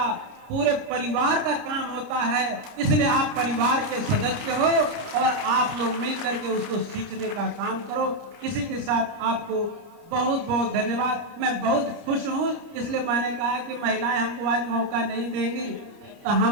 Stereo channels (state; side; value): late; left; 29 ms